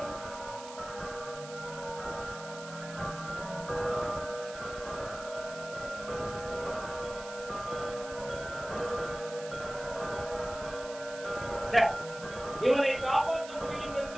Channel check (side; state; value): right; noise; hiss, 14 dB below the sound